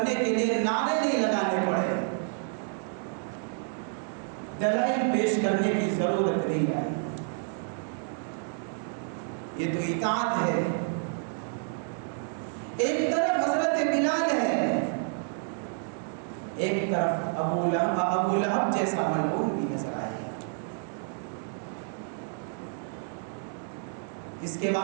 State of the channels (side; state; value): left; silent; 56 dB below the other